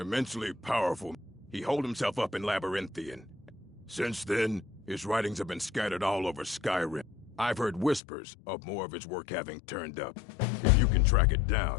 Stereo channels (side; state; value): right; drops out; at 8.0 s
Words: powerful. He holed himself up in Labyrinthian. Since then, his writings have been scattered all over Skyrim. I've heard whispers of more of his work having turned up. If you can track it